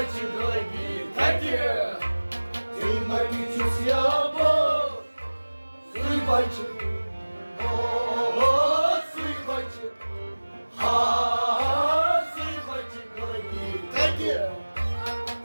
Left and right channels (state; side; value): inverted; both; correlation -1.00